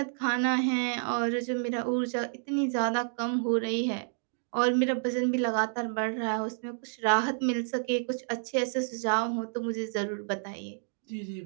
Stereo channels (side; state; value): left; silent; digital silence